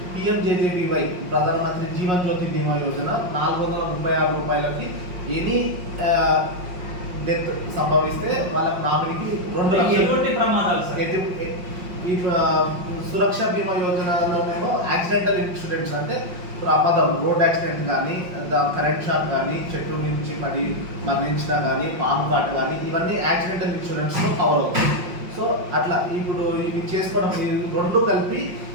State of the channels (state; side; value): late; left; 5.5 ms